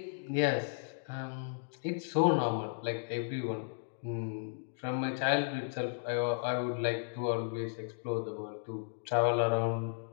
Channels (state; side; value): silent; right; digital silence